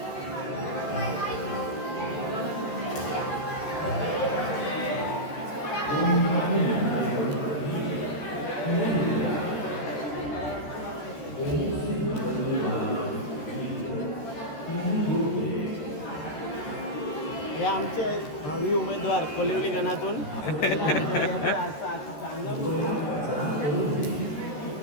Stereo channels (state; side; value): late; right; 13 ms